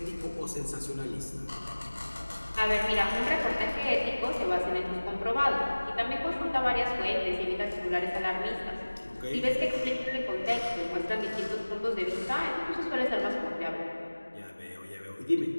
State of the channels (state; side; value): inverted; both; correlation -1.00